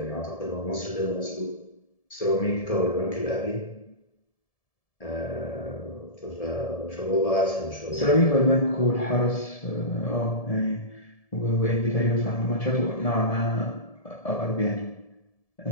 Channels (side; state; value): right; late; 1.7 ms